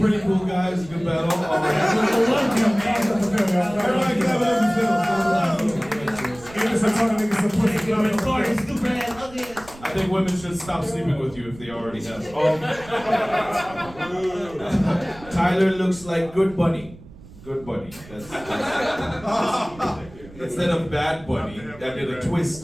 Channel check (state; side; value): noise; right; rumble, 20 dB below the sound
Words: cool guy. He's a good battle. I love him, man. Everybody clap it up and I think women should stop sleeping with you if they already have. Tyler looks like good bunny. Good bunny. That's instead of bad bunny, that did a twist